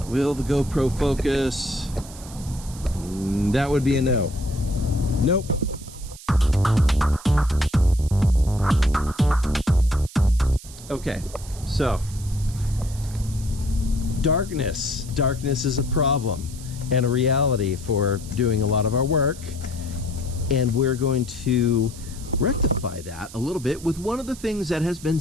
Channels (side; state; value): right; noise; hiss, 17 dB below the sound